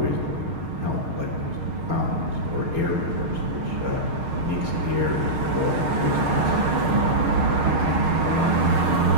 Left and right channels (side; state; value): left; late; 6.5 ms